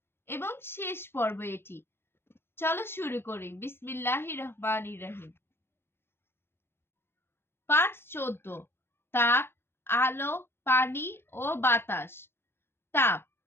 এবং শেষ পর্ব এটি। চলো শুরু করি। বিসমিল্লাহির রহমানির রহিম। পাঠ 14। তাপ, আলো, পানি ও বাতাস। তাপ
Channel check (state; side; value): late; right; 0.11 ms